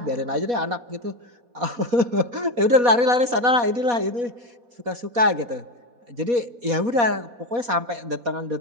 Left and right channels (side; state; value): left; late; 4.2 ms